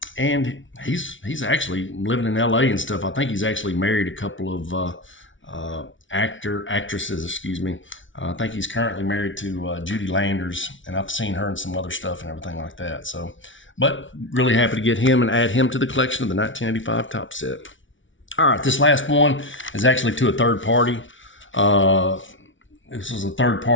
and he's actually living in LA and stuff. I think he's actually married a couple of actresses, excuse me. I think he's currently married to Judy Landers, and I've seen her in some other stuff and everything like that. So, but really happy to get him and add him to the collection of the 1985 Topps set. All right, this last one is actually to a third party. This was a third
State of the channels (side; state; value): right; late; 0.56 ms